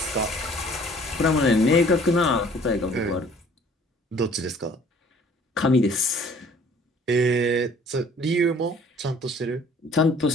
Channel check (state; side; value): normal; both; correlation 0.54